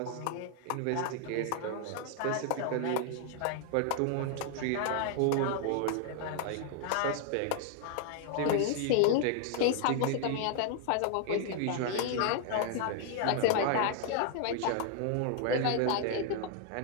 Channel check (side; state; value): both; different; correlation 0.00